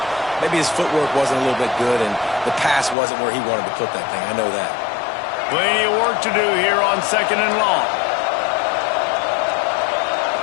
maybe his footwork wasn't a little bit good, and the pass wasn't where he wanted to put that thing. I know that. Plenty of work to do here on 2nd and long.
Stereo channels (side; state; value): right; drops out; at 3.0 s